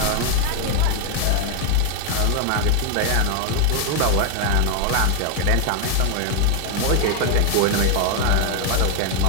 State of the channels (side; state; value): both; different; correlation 0.01